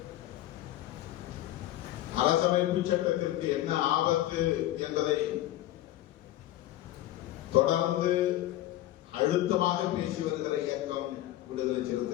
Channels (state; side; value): quieter; right; 14.7 dB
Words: அரசமைப்பு சட்டத்திற்கு என்ன ஆபத்து என்பதை தொடர்ந்து அழுத்தமாக பேசி வருகிற இயக்கம் விடுதலை